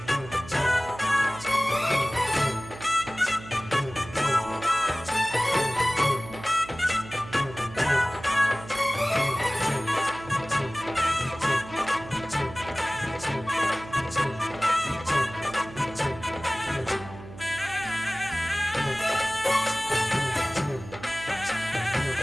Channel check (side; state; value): right; noise; hum, 15 dB below the sound